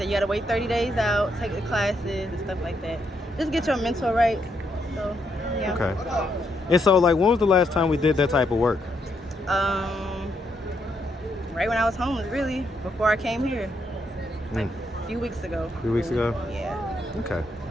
you gotta wait 30 days out, take the classes and stuff like that. Just get your mental right. So yeah. Okay. And so, like, when was the last time we did that type of work? Right when I was homeless, really, before I came here. Like a few weeks ago. A few weeks ago? Yeah. Okay.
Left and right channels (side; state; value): both; normal; correlation 0.77